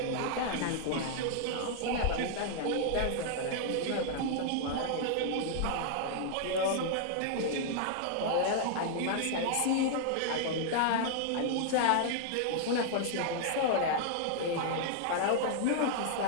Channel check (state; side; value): different; both; correlation -0.01